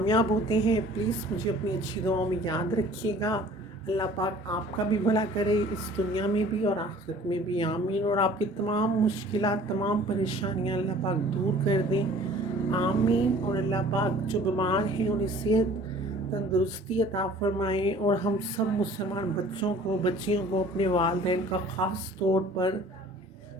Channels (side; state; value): both; normal; correlation 0.50